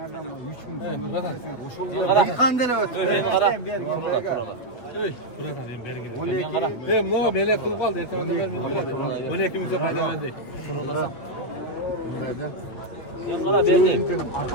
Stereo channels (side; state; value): right; late; 8.6 ms